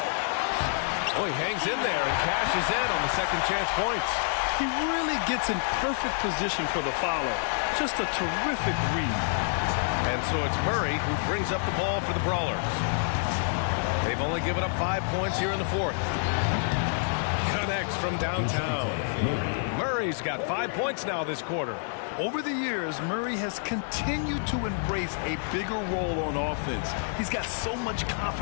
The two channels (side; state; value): right; silent; digital silence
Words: Oh, he hangs in there and cashes in on the second chance points. He really gets in perfect position for the follow. Just a terrific read. And so it's Murray who brings up the ball for the Brawlers. They've only given up 5 points here in the fourth. Connects from downtown. Murray's got 5 points now this quarter. Over the years, Murray has continued to embrace a bigger role on offense. He's got so much